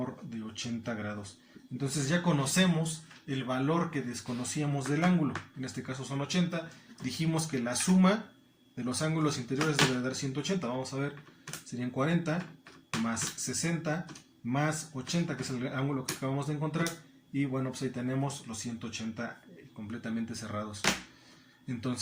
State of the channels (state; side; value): identical; both; correlation 1.00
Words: de 80 grados. Entonces ya conocemos el valor que desconocíamos del ángulo, en este caso son 80, dijimos que la suma de los ángulos interiores debe dar 180, vamos a ver, serían 40 más 60 más 80, que es el ángulo que acabamos de encontrar, y bueno, pues ahí tenemos los 180 completamente cerrados.